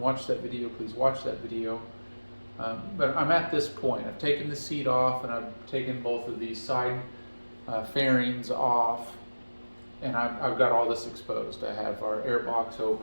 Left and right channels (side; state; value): both; inverted; correlation -1.00